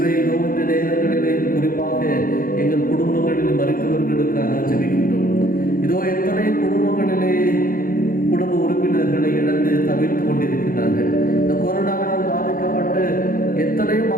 இதோ இந்த நேரங்களிலே குறிப்பாக எங்கள் குடும்பங்களில் மறித்தவர்களுக்காக ஜெபிக்கின்றோம். இதோ எத்தனை குடும்பங்களிலே குடும்ப உறுப்பினர்களை இழந்து தவிர்த்து கொண்டிருக்கிறார்கள். இந்த கொரோனாவினால் பாதிக்கப்பட்டு எத்தனையோ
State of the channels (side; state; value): right; late; 0.41 ms